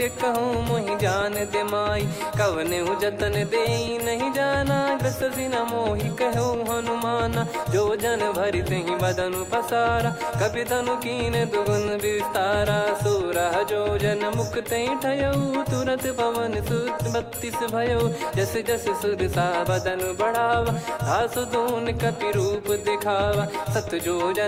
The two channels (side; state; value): both; identical; correlation 1.00